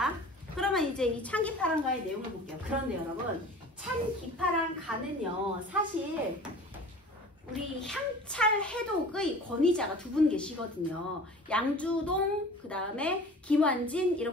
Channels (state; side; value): normal; both; correlation 0.42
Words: 그러면 이제 이 찬기파랑가의 내용을 볼게요. 그런데 여러분, 찬기파랑가는요, 사실 우리 향찰 해독의 권위자가 두 분 계시거든요. 양주동, 그 다음에 김완진